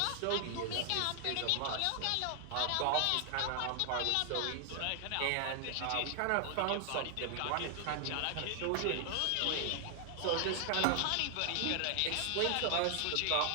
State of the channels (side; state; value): both; different; correlation 0.00